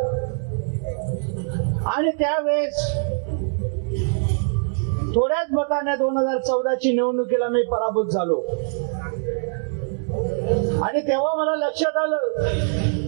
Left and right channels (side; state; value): left; silent; digital silence